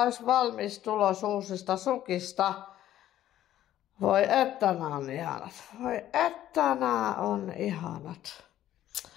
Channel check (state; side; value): quieter; right; 12.6 dB